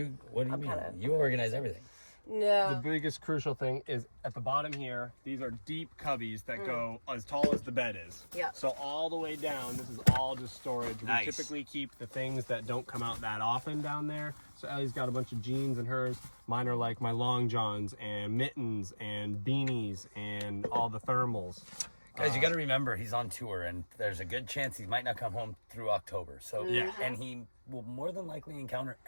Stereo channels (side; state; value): both; inverted; correlation -1.00